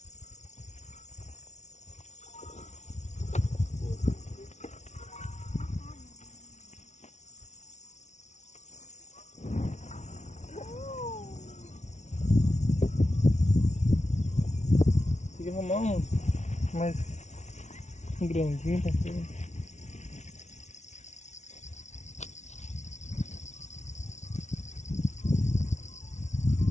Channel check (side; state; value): right; late; 0.33 ms